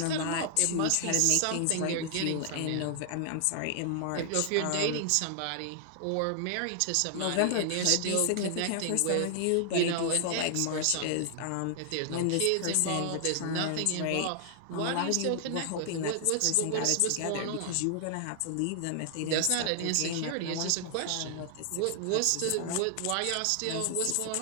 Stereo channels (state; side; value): different; both; correlation 0.00